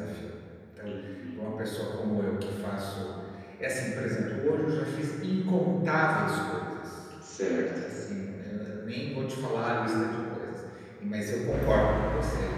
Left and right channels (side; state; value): both; identical; correlation 1.00